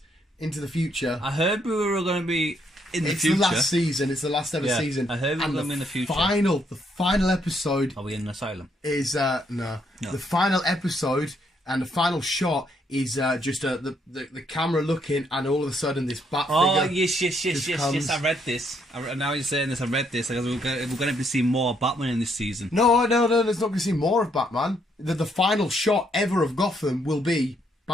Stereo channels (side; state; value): both; normal; correlation 0.72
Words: into the future. I heard we were going to be in the future. It's the last season. It's the last ever season. I heard we were going to be in the future. The final episode. Are we in an asylum? Is no. The final episode and the final shot is just the camera looking, and all of a sudden this bat figure. Oh yes! I read this. Now you're saying this. I read this. Because we're going to be seeing more Batman in this season. No. There's not going to see more of Batman. The final shot ever of Gotham will be